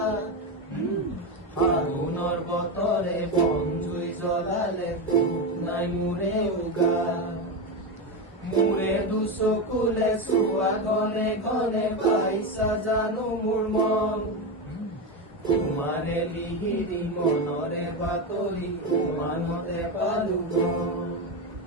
ফাগুনৰ বতৰে বনজুই জ্বলালে নাই মোৰে উগাত মুৰে দুচকুলে চোৱা ঘনে ঘনে পাইছা জানো মোৰ মন তোমাৰে লিহিৰি মনৰে বাতৰি উমানতে পালো গম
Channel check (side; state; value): both; normal; correlation 0.14